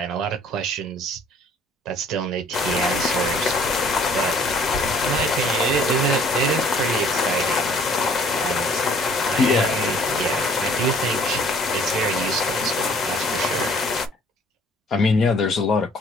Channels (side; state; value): both; normal; correlation 0.57